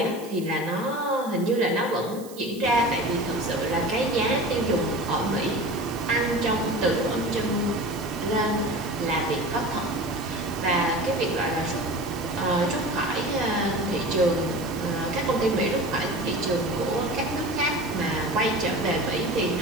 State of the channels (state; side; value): noise; right; hiss, 18 dB below the sound